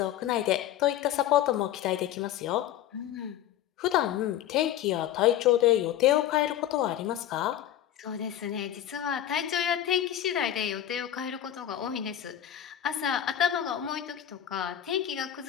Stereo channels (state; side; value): quieter; right; 11.4 dB